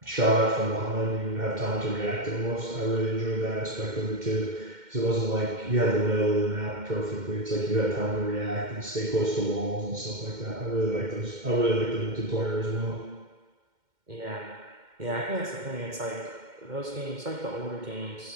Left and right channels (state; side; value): late; left; 2.1 ms